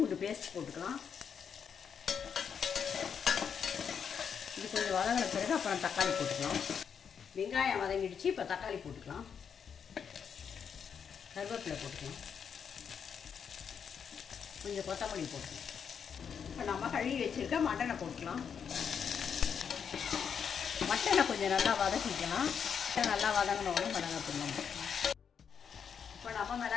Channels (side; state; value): right; quieter; 7.1 dB